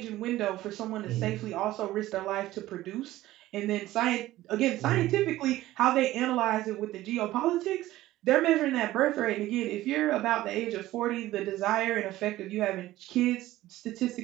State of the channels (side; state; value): left; quieter; 15.8 dB